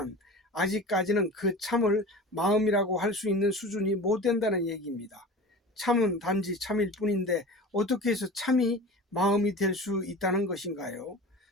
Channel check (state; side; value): normal; both; correlation 0.35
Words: 아직까지는 그 참을 마음이라고 할 수 있는 수준이 못 된다는 얘기입니다. 참은 단지 참일 뿐인데 어떻게 해서 참이 마음이 될 수 있다는 것인가요?